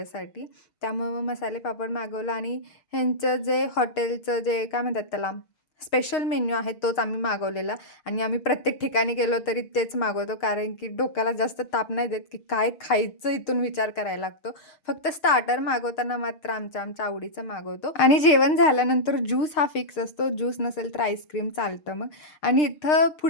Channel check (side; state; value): right; late; 6.5 ms